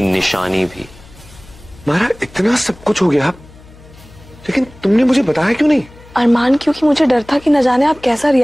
निशानी भी। माहिरा, इतना सब कुछ हो गया, लेकिन तुमने मुझे बताया क्यों नहीं? अरमान, क्योंकि मुझे डर था कि न जाने आप कैसा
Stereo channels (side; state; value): left; noise; hum, 23 dB below the sound